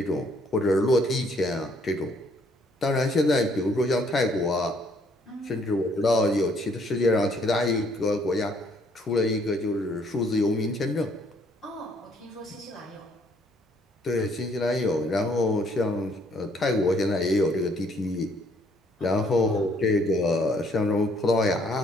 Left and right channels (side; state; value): both; normal; correlation 0.65